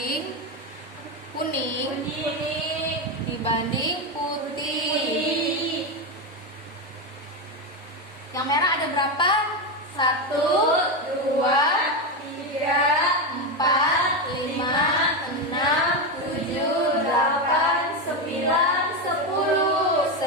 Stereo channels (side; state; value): both; normal; correlation 0.11